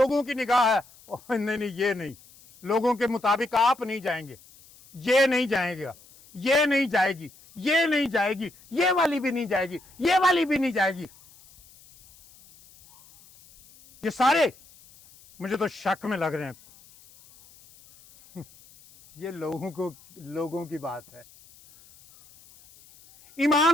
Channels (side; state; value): left; noise; hiss, 25 dB below the sound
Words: की निगाह है, नहीं नहीं ये नहीं, लोगों के मुताबिक आप नहीं जाएंगे, ये नहीं जाएगा, ये नहीं जाएगी, ये नहीं जाएगी, ये वाली भी नहीं जाएगी, ये वाली भी नहीं जाएगी। ये सारे मुझे तो शक में लग रहे हैं। ये लोगों की बात है।